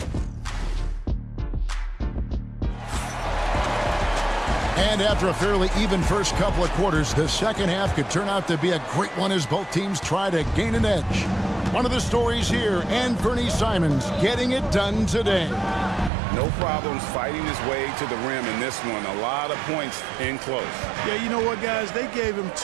And after a fairly even first couple of quarters, the second half could turn out to be a great one as both teams try to gain an edge. One of the stories here, Anthony Simons getting it done today. No problems fighting his way to the rim in this one. A lot of points in close. Yeah, you know what, guys? They gave him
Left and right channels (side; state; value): left; drops out; at 16.1 s